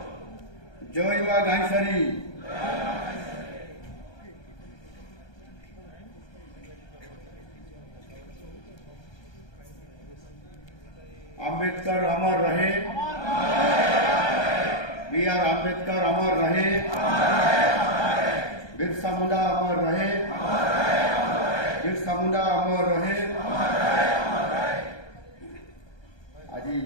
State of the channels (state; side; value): late; right; 1.2 ms